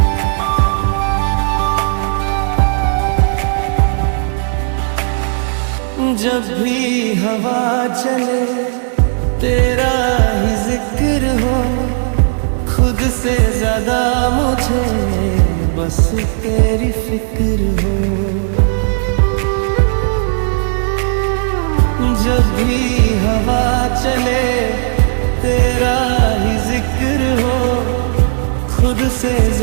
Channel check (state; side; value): silent; left; digital silence